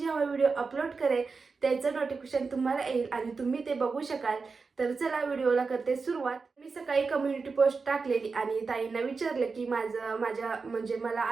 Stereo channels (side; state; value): left; quieter; 4.6 dB